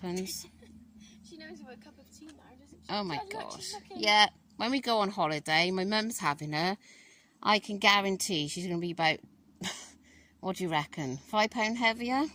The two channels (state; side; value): identical; both; correlation 1.00